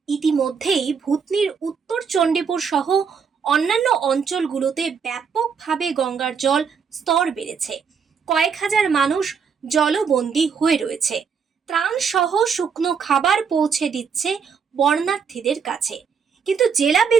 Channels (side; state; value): left; quieter; 6.3 dB